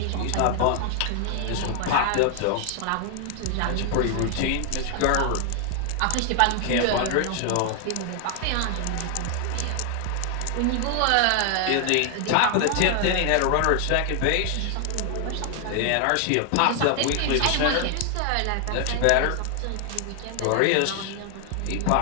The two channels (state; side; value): different; both; correlation 0.00